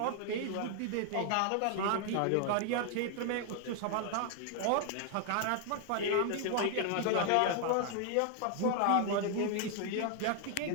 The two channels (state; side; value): different; both; correlation 0.00